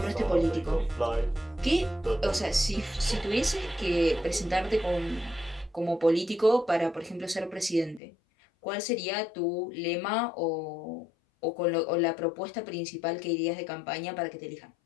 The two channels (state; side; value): drops out; right; at 8.0 s